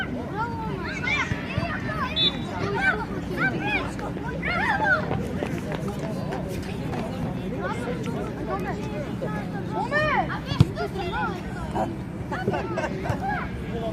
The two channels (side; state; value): both; identical; correlation 1.00